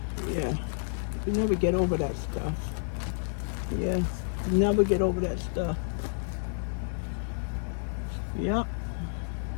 Yeah. We never get over that stuff. Yeah. Never get over that stuff. Yep.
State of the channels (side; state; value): right; silent; digital silence